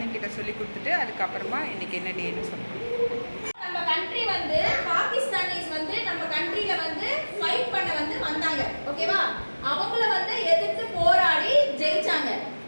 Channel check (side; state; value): both; inverted; correlation -1.00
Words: சொல்லி கொடுத்துட்டு அதுக்கப்புறமா இன்றைக்கி என்ன டேன்னு சொல்லுவோம். நம்ம கண்ட்ரி வந்து பாகிஸ்தானிஸ் வந்து நம்ம கண்ட்ரியில வந்து ஃபைட் பண்ண வந்து வந்தாங்க, ஓகேவா? அவங்கள வந்து எதிர்த்து போராடி ஜெயிச்சாங்க.